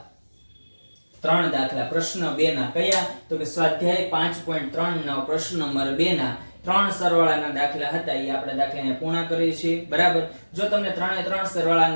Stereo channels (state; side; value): inverted; both; correlation -1.00